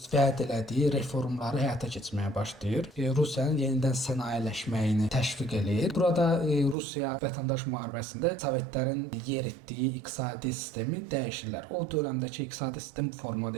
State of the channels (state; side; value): drops out; left; at 6.8 s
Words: vəd elədiyi reformları həyata keçirməyə başlayır. Rusiyanın yenidən sənayeləşməyini təşviq eləyir. Burada Rusiya vətəndaş müharibəsində Sovetlərin yeritdiyi iqtisadi sistemi dəyişirlər. O dövrəmdəki iqtisadi sistem bu formada